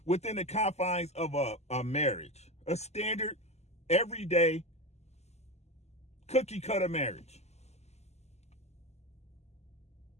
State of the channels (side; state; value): right; late; 0.32 ms